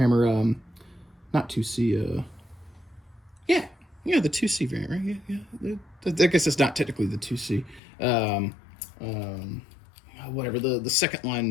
not 2C, yeah, the 2C variant, right? Yeah. I guess it's not technically the 2C. Whatever, the second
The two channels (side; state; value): right; drops out; at 7.8 s